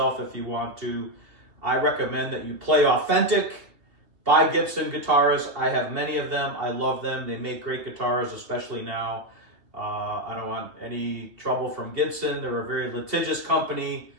if you want to. I recommend that you play authentic, buy Gibson guitars. I have many of them. I love them. They make great guitars, especially now. I don't want any trouble from Gibson. They're a very litigious company,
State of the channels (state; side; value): late; left; 2.8 ms